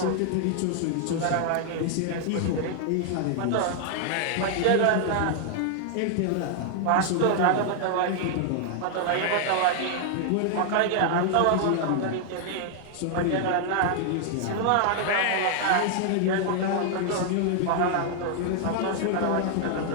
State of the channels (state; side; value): different; both; correlation 0.00